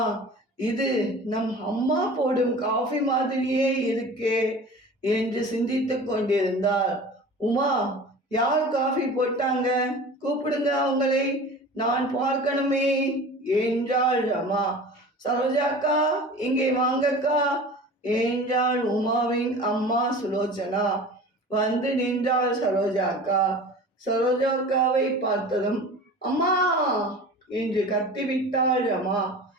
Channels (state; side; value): normal; both; correlation 0.39